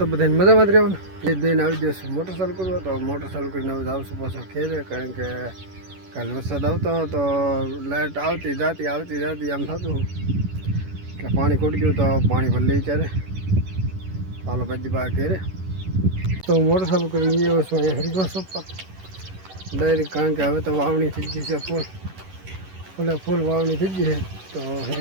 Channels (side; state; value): left; late; 11 ms